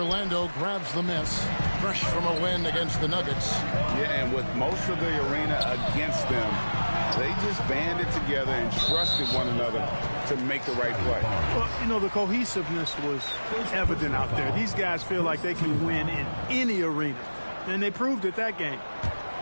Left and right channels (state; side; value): inverted; both; correlation -1.00